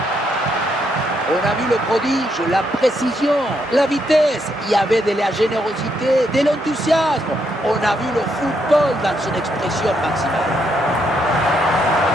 On a vu le prodige, la précision, la vitesse. Il y avait de la générosité, de l'enthousiasme. On a vu le football dans son expression maximale.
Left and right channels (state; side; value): normal; both; correlation 0.76